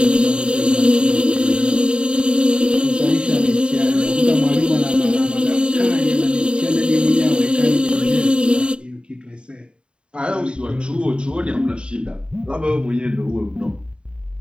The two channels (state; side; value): late; left; 0.053 ms